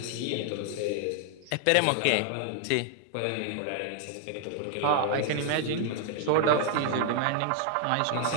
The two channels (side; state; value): both; different; correlation 0.00